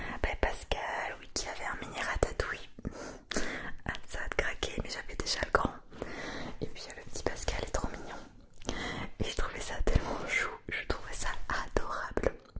Pascal, oui, qui avait un mini ratatouille. Ah, ça a craqué, mais j'avais déjà le grand. Et puis le petit Pascal est trop mignon. Et j'ai trouvé ça tellement chou, je trouvais ça adorable.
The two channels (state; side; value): identical; both; correlation 1.00